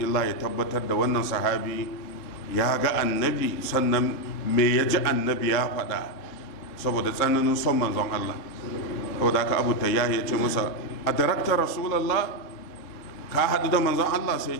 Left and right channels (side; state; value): right; late; 3.8 ms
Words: ya tabbatar da wannan sahabi ya ga annabi, sannan me ya ji annabi ya faɗa, saboda tsananin son manzon Allah. saboda haka abu tayyahi ya ce masa, a darakta rasulallah, ka haɗu da manzon Allah? sai